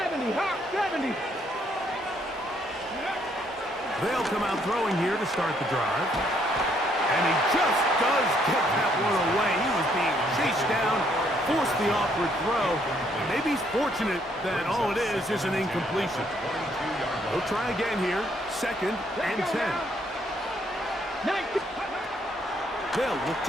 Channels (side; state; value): both; normal; correlation 0.69